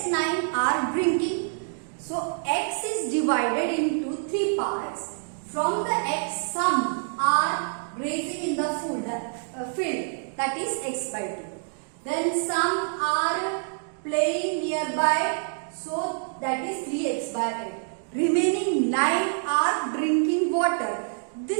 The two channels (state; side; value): silent; left; digital silence